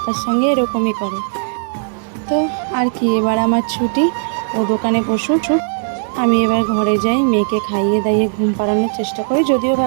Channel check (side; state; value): left; silent; digital silence